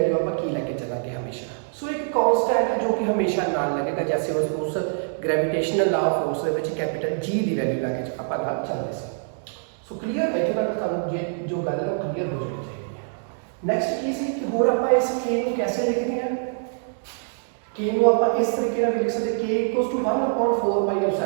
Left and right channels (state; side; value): silent; left; digital silence